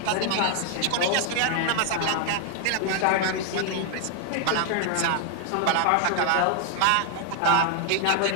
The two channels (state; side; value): different; both; correlation 0.00